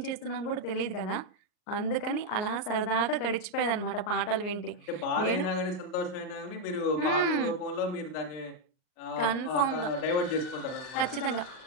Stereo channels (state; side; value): late; right; 38 ms